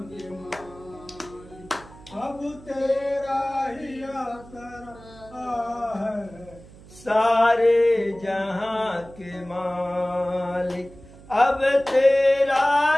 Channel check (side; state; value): right; noise; hum, 20 dB below the sound